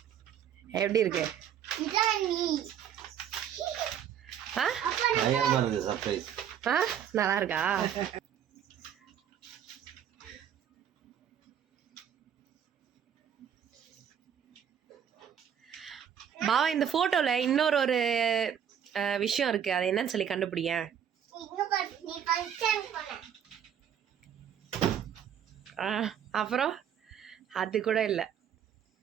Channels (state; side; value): quieter; left; 8.9 dB